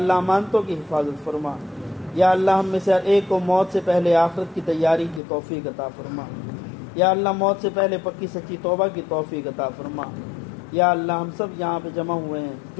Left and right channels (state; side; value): drops out; right; at 5.2 s